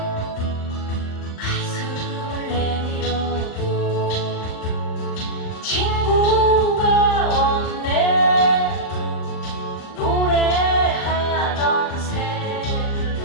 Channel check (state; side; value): late; right; 39 ms